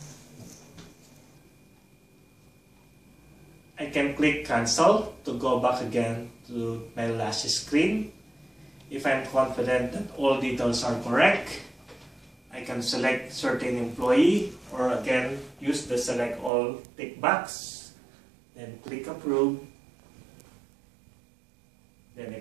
I can click cancel to go back again to my last screen. If I'm confident that all details are correct, I can select certain employee or again use the select all tick box. Then click approve. Then I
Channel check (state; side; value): drops out; left; at 16.5 s